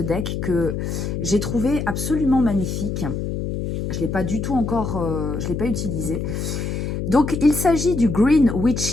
que j'ai trouvé absolument magnifique. Je ne l'ai pas du tout encore, je ne l'ai pas utilisé. Donc, il s'agit du Green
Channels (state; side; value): noise; left; hum, 3 dB below the sound